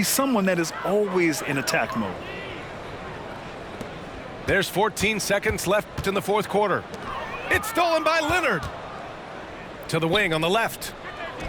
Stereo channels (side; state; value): both; identical; correlation 1.00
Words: someone that is always in attack mode. There's 14 seconds left in the fourth quarter. It's stolen by Leonard. To the wing on the left.